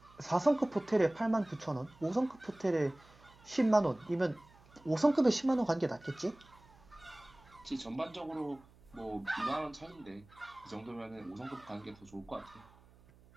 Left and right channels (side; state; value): right; noise; hum, 26 dB below the sound